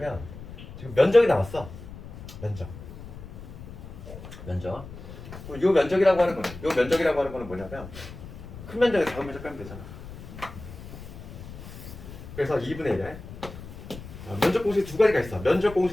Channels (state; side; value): noise; left; rumble, 13 dB below the sound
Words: 지금 면적이 나왔어. 면적. 요 면적이라고 하는 거는 뭐냐면 큰 면적에 작은 면적 빼면 되잖아. 그래서 2분의 1에 면적 공식 두 가지가 있어. 면적